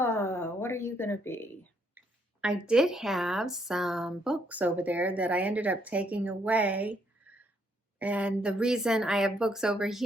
are you going to be? I did have some books over there that I ended up taking away. And the reason I have books over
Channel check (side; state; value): both; normal; correlation 0.71